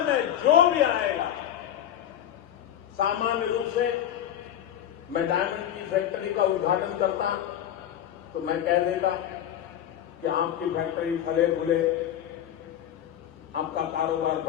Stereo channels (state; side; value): quieter; right; 10.8 dB